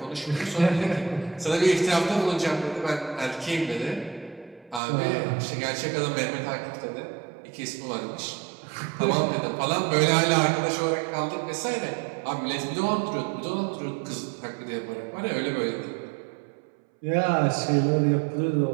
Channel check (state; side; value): drops out; left; at 4.8 s